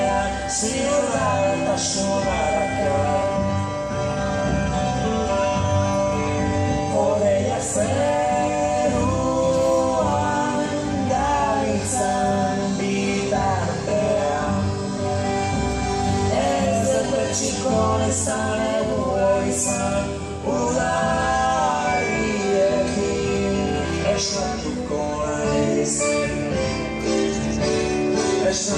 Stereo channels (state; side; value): identical; both; correlation 1.00